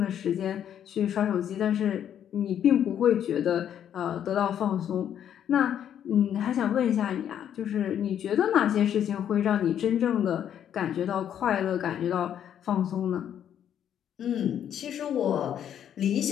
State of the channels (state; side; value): quieter; right; 9.7 dB